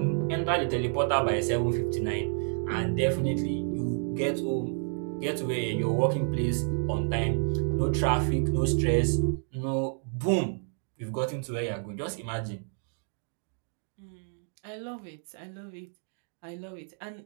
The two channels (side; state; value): left; silent; 58 dB below the other